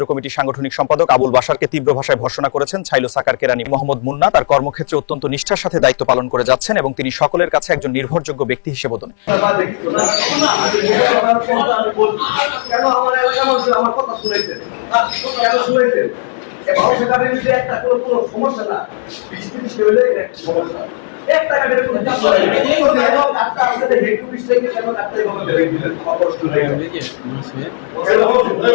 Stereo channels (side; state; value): right; silent; digital silence